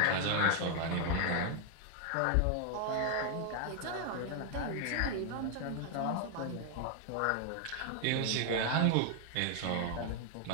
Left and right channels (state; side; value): different; both; correlation 0.00